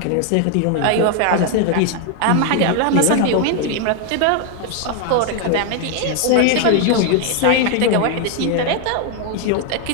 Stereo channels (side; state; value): both; different; correlation 0.01